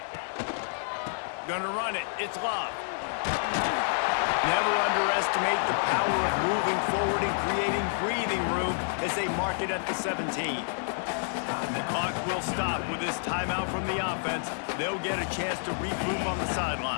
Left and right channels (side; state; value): right; silent; 59 dB below the other